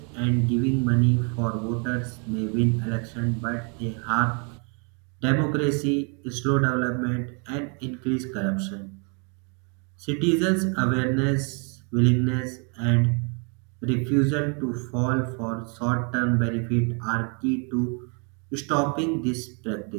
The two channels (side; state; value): left; quieter; 36.7 dB